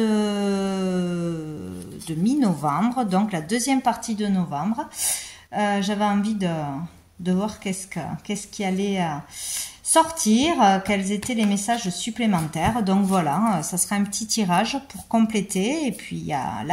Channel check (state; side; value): identical; both; correlation 1.00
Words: mi-novembre, donc la deuxième partie de novembre. J'avais envie de voir qu'est-ce qui allait sortir, quels étaient les messages supplémentaires. Donc voilà, ça sera un petit tirage pour compléter. Et puis il y a